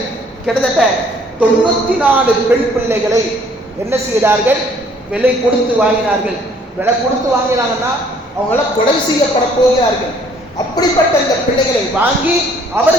கிட்டத்தட்ட 94 பெண் பிள்ளைகளை என்ன செய்தார்கள், விலை கொடுத்து வாங்கினார்கள். விலை கொடுத்து வாங்கினாங்கன்னா அவங்களாம் கொலை செய்யப்பட போகிறார்கள். அப்படிப்பட்ட இந்த பிள்ளைகளை வாங்கி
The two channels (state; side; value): normal; both; correlation 0.60